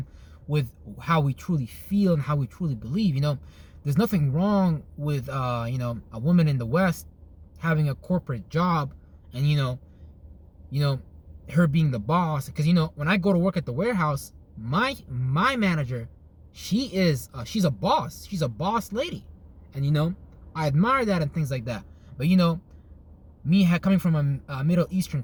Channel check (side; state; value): both; identical; correlation 1.00